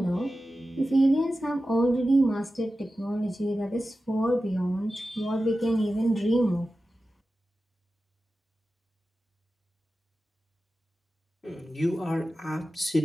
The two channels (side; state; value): both; normal; correlation 0.94